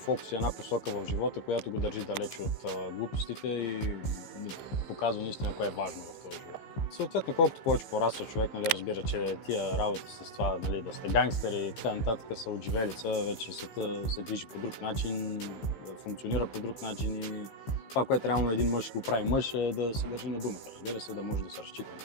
и една посока в живота, която го държи далече от глупостите и показва наистина кое е важно в този живот. Съответно, колкото повече пораства човек, разбира, че тия работи с това, да сте гангстери и така нататък са отживелица, вече света се движи по друг начин, функционира по друг начин и това, което реално един мъж го прави мъж, е да се държи на думата, разбира се, да може да се разчита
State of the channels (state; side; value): late; right; 15 ms